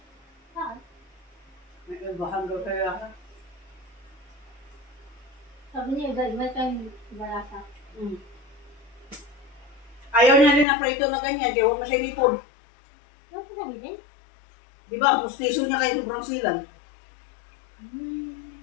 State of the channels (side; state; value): right; drops out; at 10.7 s